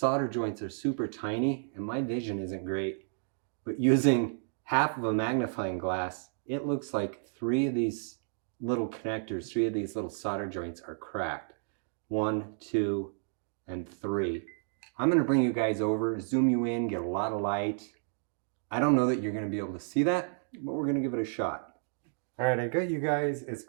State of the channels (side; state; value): left; silent; digital silence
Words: joints are super tiny, and my vision isn't great. But using half of a magnifying glass, it looks like three of these little connectors, three of these little solder joints are cracked. 1, 2, and 3. I'm going to bring you guys over, zoom you in, get a lot of light. I don't know that you're going to be able to see that, but we're going to give it a shot. All right, I got you guys as